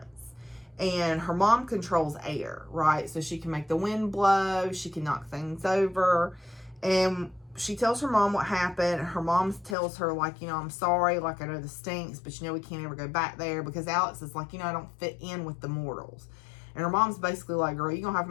And her mom controls air, right? So she can make the wind blow. She can knock things over. And she tells her mom what happened. Her mom tells her, like, I'm sorry. Like, I know this stinks, but we can't ever go back there. Because Alex is like, I don't fit in with the mortals. And her mom's basically like, girl, you're going to have to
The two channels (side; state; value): right; drops out; at 9.8 s